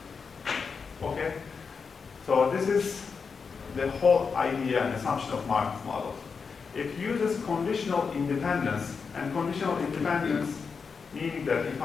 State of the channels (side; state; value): right; quieter; 5.4 dB